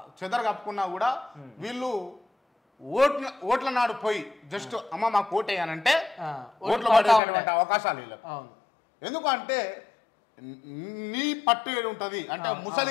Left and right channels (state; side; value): drops out; right; at 7.2 s